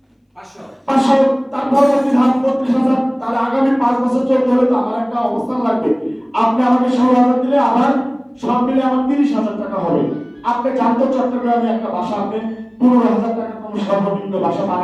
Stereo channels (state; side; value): identical; both; correlation 1.00